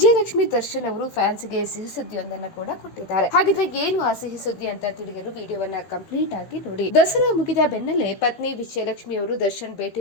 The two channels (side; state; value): right; late; 15 ms